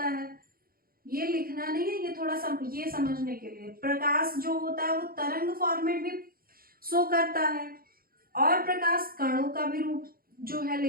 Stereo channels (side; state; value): left; late; 0.43 ms